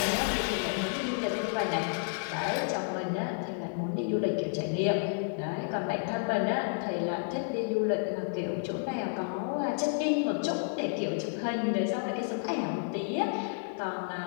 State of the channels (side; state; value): right; silent; digital silence